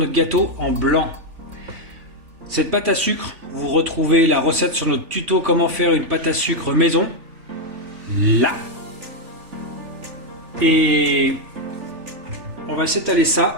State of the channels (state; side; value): late; left; 3.4 ms